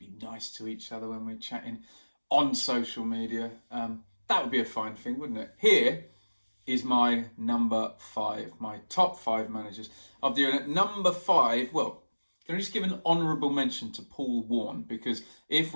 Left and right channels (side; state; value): both; inverted; correlation -1.00